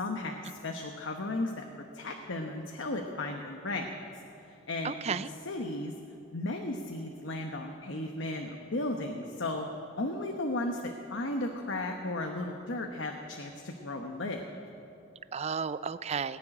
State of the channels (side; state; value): both; normal; correlation 0.19